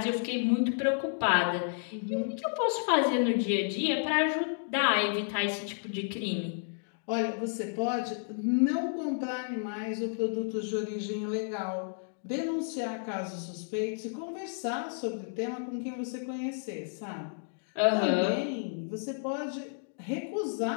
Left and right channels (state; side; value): silent; right; digital silence